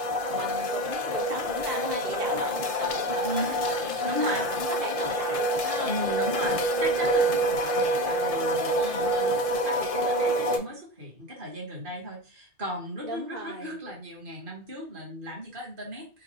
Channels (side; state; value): left; late; 1.7 ms